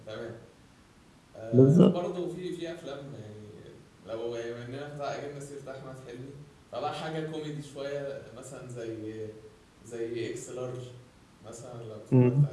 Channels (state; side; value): identical; both; correlation 1.00